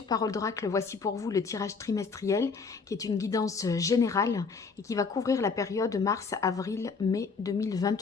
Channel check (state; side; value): quieter; right; 4.9 dB